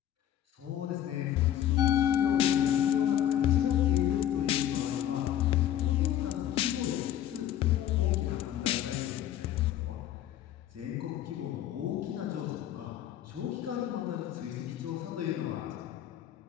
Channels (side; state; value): right; quieter; 11.5 dB